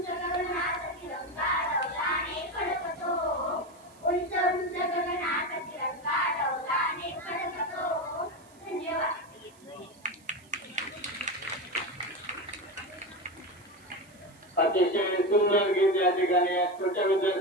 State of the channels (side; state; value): right; noise; hiss, 28 dB below the sound